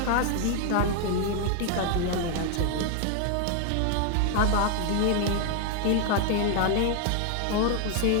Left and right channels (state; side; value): different; both; correlation 0.00